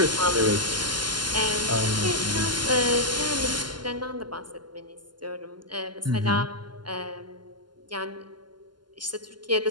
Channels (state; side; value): late; left; 0.71 ms